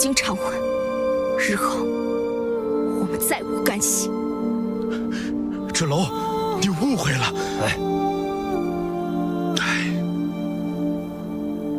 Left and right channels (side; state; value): both; identical; correlation 1.00